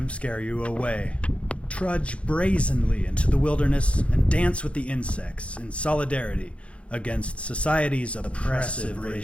scare you away. Trudge brazenly into the wilderness and dance with the insects in solidarity against society's oppressive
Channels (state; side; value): late; right; 0.061 ms